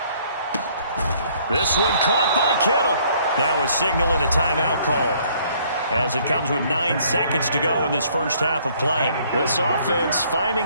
This one caught by Kittle. Now a signal and a timeout call, as it comes with 9 seconds to go in this first half of play. This offense finding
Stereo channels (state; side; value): inverted; both; correlation -0.62